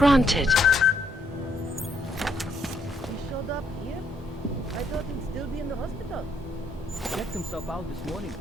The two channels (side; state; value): both; normal; correlation 0.72